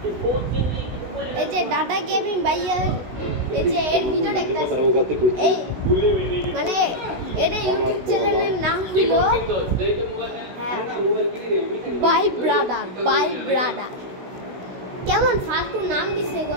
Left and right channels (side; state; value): left; late; 16 ms